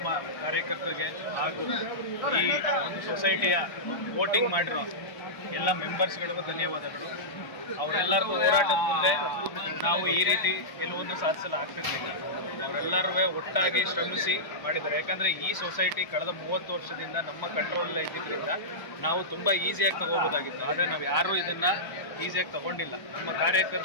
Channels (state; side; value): late; right; 1.0 ms